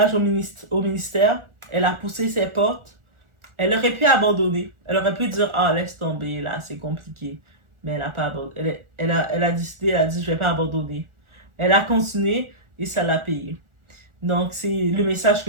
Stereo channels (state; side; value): late; left; 1.4 ms